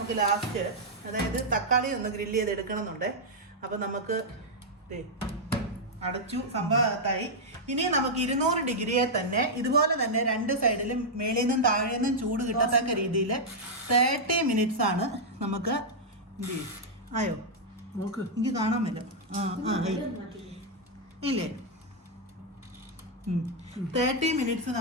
ലാസ്റ്റ്, അതായത് തക്കാളി ഒന്ന് ഗ്രില്ല് ചെയ്ത് എടുക്കണമെന്നുണ്ട്. അപ്പം നമുക്ക് അടച്ചു സംഭവത്തായി. ഇനി നമുക്ക് 200 ഡിഗ്രിയെ തന്നെ ഇതുപോലെ തന്നെ 2 സൈഡിലും മേളിൽ നിന്നും താഴെ നിന്നും ചൂട് കിട്ടത്തക്ക രീതിയിൽ 30 മിനിറ്റ്സ് ആണ് നമുക്ക്. എന്ത് ചെയ്യും? ആയോ? എനിക്ക് കാണാൻ പറ്റും. ഇല്ലേ? 30 മിനിറ്റ്സ്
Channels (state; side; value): normal; both; correlation -0.05